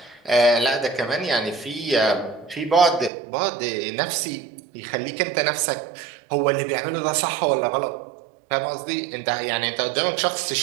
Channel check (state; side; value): drops out; left; at 3.1 s